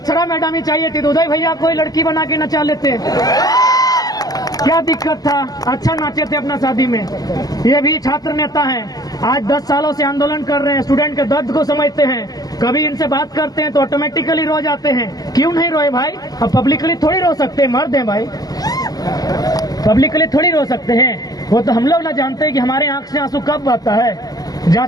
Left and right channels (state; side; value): late; right; 0.18 ms